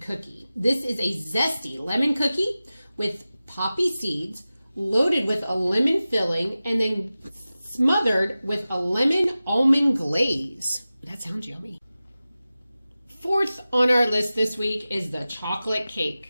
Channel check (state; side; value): inverted; both; correlation -0.96